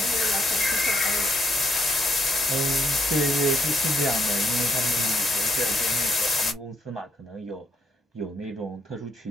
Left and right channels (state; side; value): normal; both; correlation 0.74